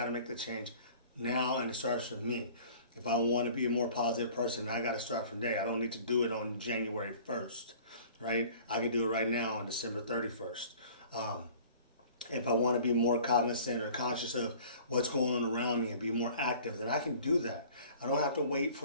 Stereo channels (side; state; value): both; inverted; correlation -0.48